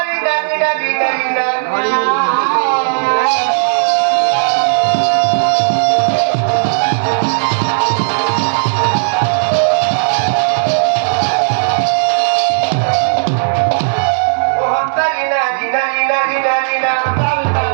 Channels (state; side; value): silent; left; digital silence